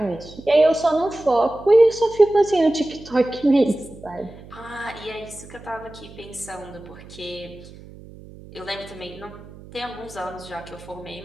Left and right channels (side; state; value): right; noise; hum, 18 dB below the sound